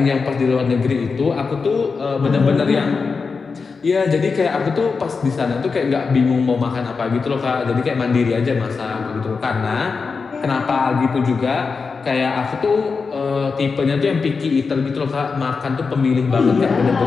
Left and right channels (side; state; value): right; quieter; 4.9 dB